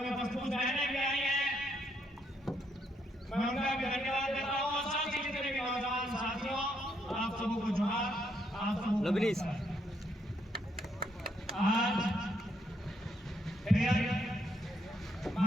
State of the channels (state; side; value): normal; both; correlation 0.74